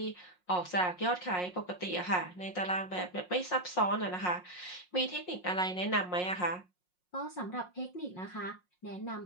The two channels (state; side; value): late; right; 5.5 ms